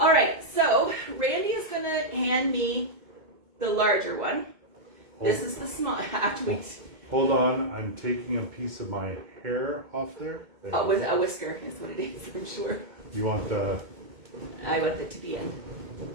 All right, so Randy is going to hand me the larger one. This is the small. Hold on, I'm taking a piece of my hair off there. A whisker is what it is, I'm sure. You want the... I want it to be in.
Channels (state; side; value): late; left; 2.2 ms